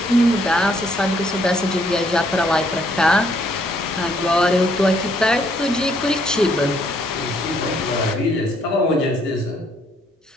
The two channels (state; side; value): normal; both; correlation 0.69